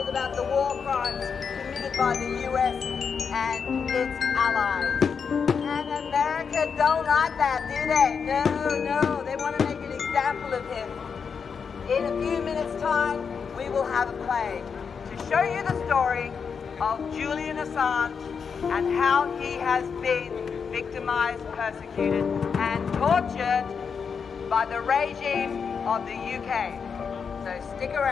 told about the war crimes committed by the US and its allies. And America don't like that, do they? No, they want to make an example of him. In a few minutes' time, we will have a play to show you the story of Julian Assange and how he has been victimized, persecuted, and tortured by the regime of the UK. So stick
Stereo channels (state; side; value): quieter; right; 6.1 dB